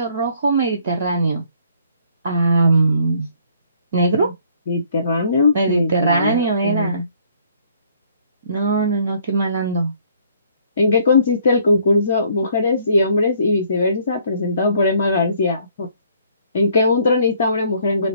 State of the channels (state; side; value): inverted; both; correlation -0.62